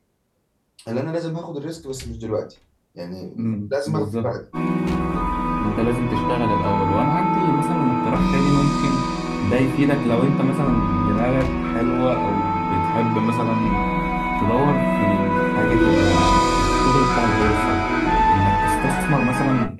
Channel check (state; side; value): identical; both; correlation 1.00